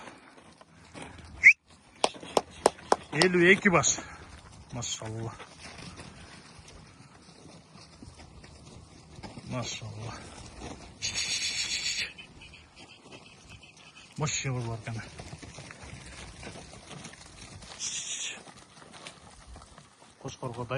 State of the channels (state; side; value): identical; both; correlation 1.00